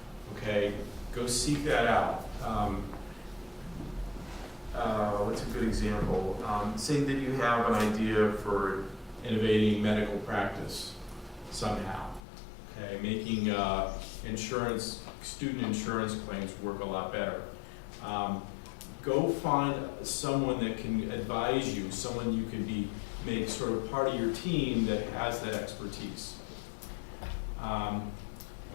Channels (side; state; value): right; drops out; at 12.2 s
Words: okay? Go seek that out. What's a good example? Say that you have an idea for innovating medical practice somehow, okay? Making student insurance claims work a lot better. Go find someone that can advise you, someone you can make sort of part of your team that has that expertise.